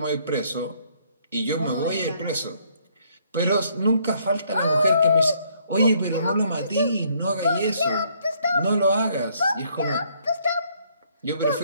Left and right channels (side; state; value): both; inverted; correlation -0.67